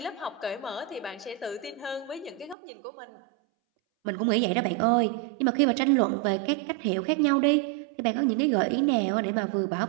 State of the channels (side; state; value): left; drops out; at 2.6 s